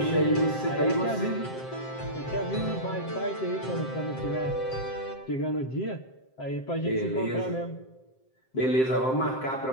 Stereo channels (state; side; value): late; right; 7.6 ms